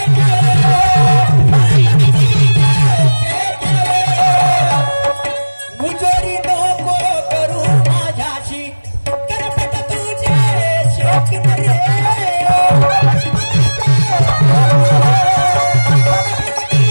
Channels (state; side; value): inverted; both; correlation -1.00